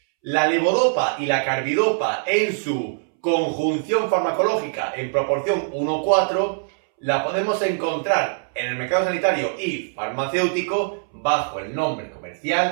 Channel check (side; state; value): left; silent; 64 dB below the other